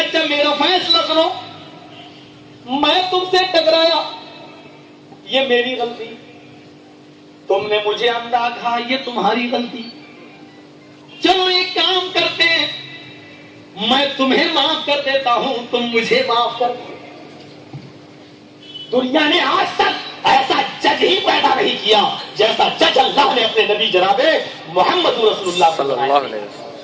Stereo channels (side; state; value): both; identical; correlation 1.00